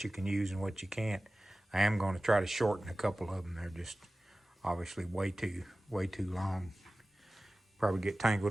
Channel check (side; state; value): both; normal; correlation 0.96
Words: you can use and what you can't. I am going to try to shorten a couple of them. They're just obviously way too long. Probably get